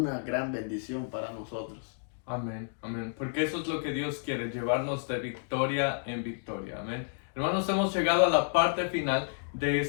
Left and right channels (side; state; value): right; silent; digital silence